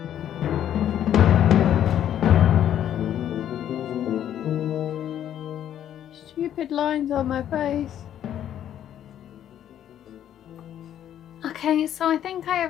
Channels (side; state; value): right; quieter; 10.6 dB